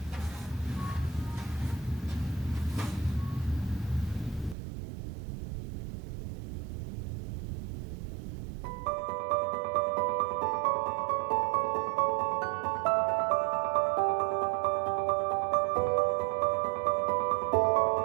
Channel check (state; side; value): drops out; left; at 4.5 s